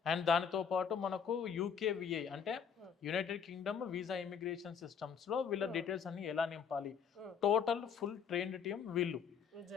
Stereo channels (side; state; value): right; quieter; 6.9 dB